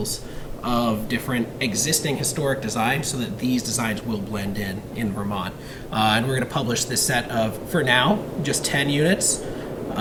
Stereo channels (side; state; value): both; identical; correlation 1.00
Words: of different existing historic designs so that these designs will blend in Vermont. And we're going to publish this set of, for now, just 10 units.